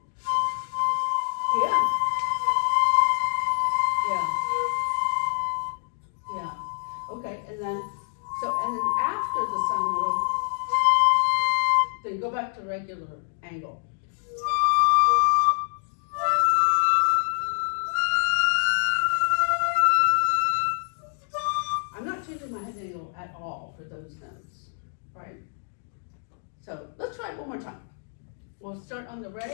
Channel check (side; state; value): right; silent; digital silence